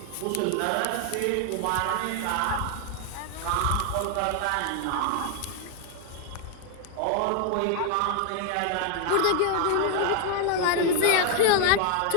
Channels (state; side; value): different; both; correlation 0.00